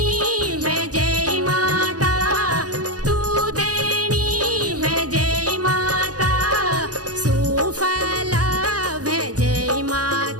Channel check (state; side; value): late; left; 0.68 ms